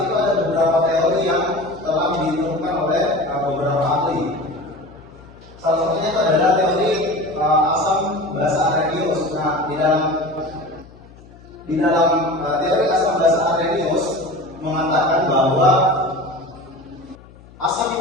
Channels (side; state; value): left; noise; hum, 23 dB below the sound